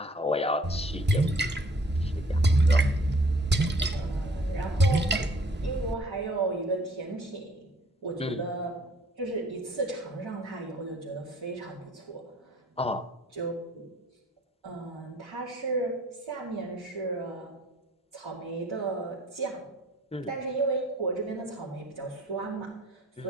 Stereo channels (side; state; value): both; normal; correlation 0.57